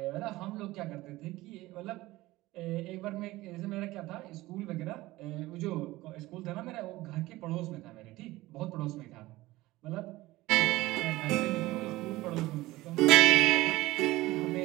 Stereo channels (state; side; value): quieter; left; 18.4 dB